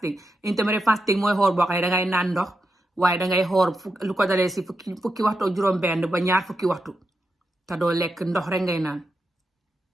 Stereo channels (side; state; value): both; normal; correlation 0.87